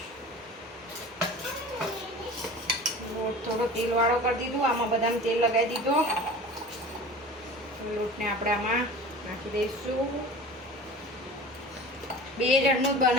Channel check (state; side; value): normal; both; correlation 0.38